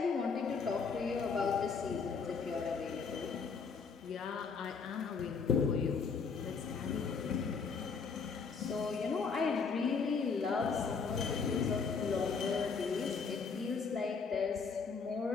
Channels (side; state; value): right; quieter; 5.3 dB